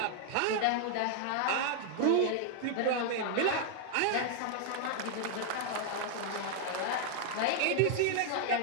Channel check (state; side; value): different; both; correlation 0.00